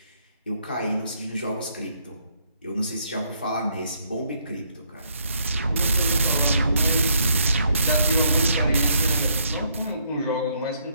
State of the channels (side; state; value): both; inverted; correlation -0.70